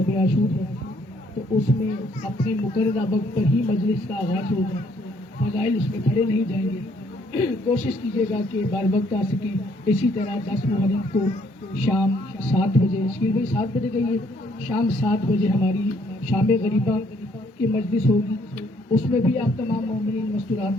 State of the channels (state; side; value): normal; both; correlation 0.66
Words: عاشور ہے تو اس میں اپنے مقررہ وقت پر ہی مجلس کا آغاز ہوگا، فضائل اس میں پڑھے نہیں جائیں گے۔ کوشش کیجیے گا کہ بر وقت آ سکیں۔ اسی طرح 10 محرم کو شام 7 بجے، شکیل بھائی 7 بجے کہیے، شام 7 بجے ہماری شام غریبہ کی مجلس ہوگی، اس میں بھی آپ تمام مومنین